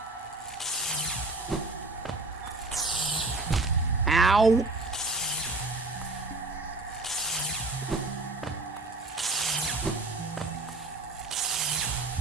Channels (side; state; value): left; quieter; 3.0 dB